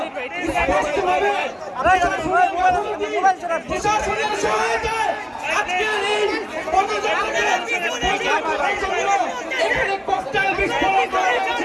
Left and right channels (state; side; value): identical; both; correlation 1.00